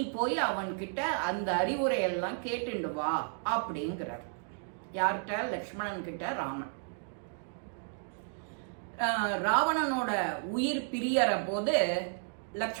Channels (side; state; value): left; silent; 56 dB below the other